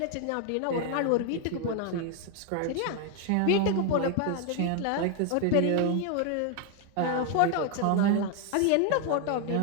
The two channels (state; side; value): different; both; correlation 0.01